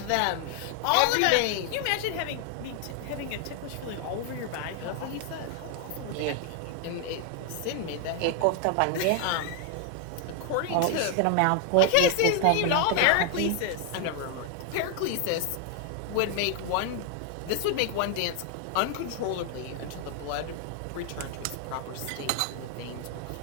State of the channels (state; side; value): different; both; correlation 0.00